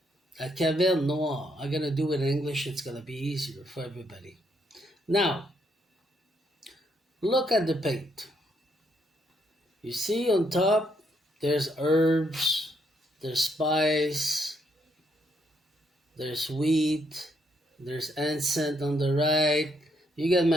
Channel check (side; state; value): both; normal; correlation 0.74